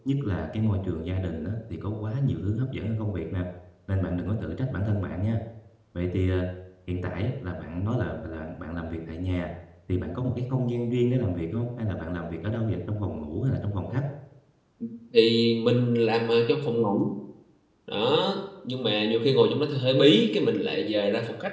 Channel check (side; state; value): both; identical; correlation 1.00